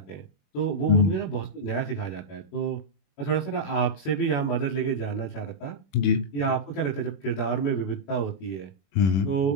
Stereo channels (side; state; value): right; late; 21 ms